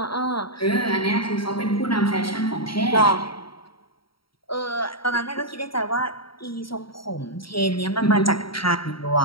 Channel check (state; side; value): late; right; 0.74 ms